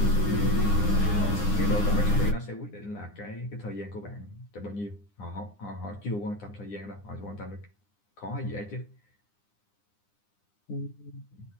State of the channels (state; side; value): late; right; 9.8 ms